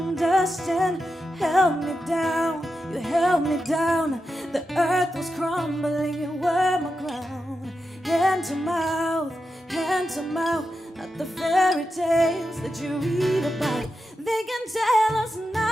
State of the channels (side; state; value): both; normal; correlation 0.89